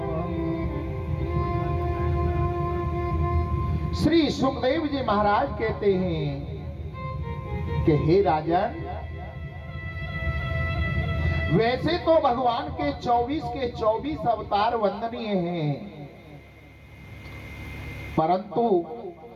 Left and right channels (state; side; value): identical; both; correlation 1.00